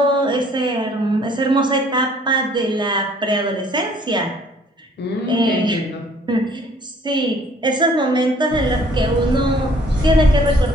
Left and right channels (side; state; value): both; normal; correlation 0.58